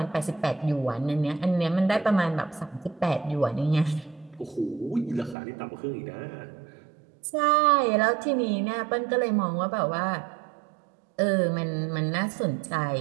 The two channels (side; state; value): left; drops out; at 5.4 s